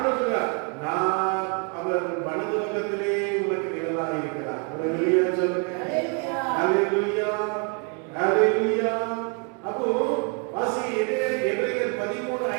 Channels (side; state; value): left; quieter; 37.9 dB